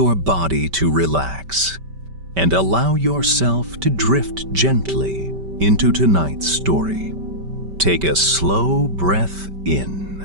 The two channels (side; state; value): left; late; 5.1 ms